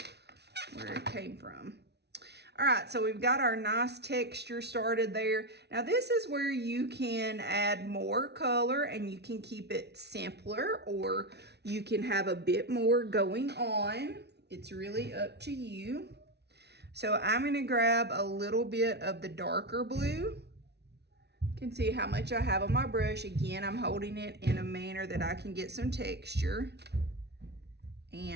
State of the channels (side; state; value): left; late; 0.49 ms